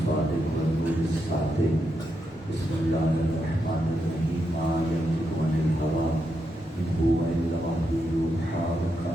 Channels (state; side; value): normal; both; correlation 0.83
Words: والنور الصادق. بسم الله الرحمن الرحيم. ما ينطق عن الهوى إن هو إلا وحي يوحى